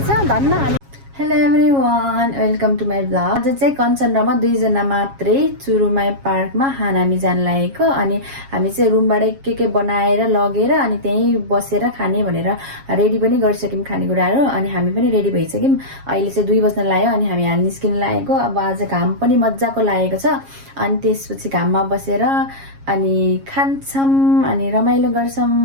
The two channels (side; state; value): left; late; 7.3 ms